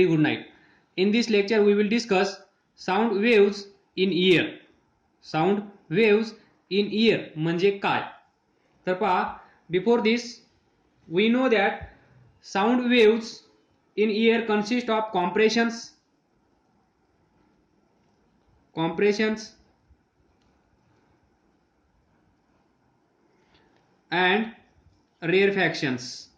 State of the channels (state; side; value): identical; both; correlation 1.00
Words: good night. In this lecture, we will discuss sound waves in ear. Sound waves in ear म्हणजे काय? तर पहा, before this, we know that sound waves in ear consist of compressions and rarefactions.